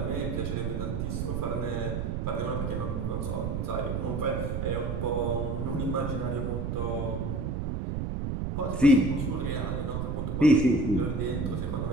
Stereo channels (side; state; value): right; noise; rumble, 1 dB below the sound